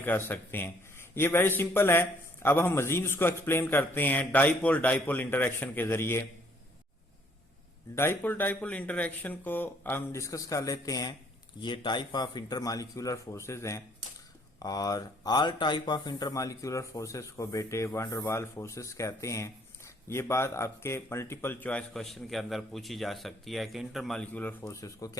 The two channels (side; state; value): both; normal; correlation 0.63